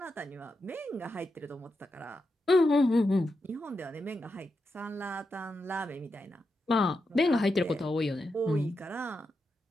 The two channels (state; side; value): normal; both; correlation 0.87